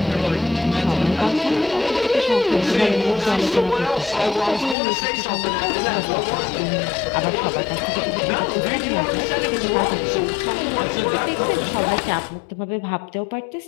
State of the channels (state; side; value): drops out; right; at 4.8 s